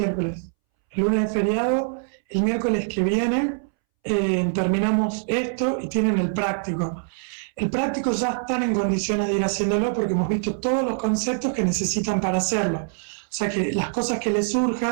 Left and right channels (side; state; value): left; silent; 63 dB below the other